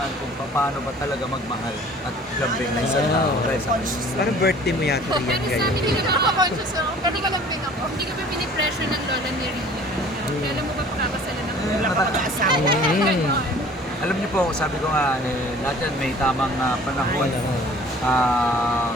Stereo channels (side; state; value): both; normal; correlation 0.49